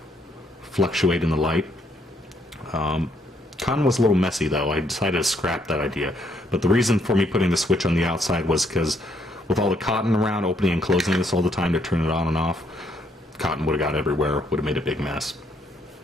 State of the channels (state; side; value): normal; both; correlation 0.71